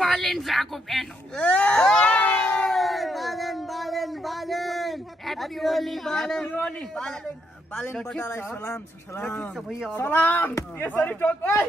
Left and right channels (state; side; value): normal; both; correlation 0.77